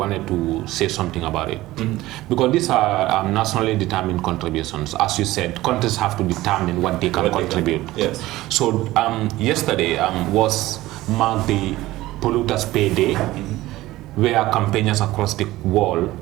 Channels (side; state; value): left; quieter; 17.2 dB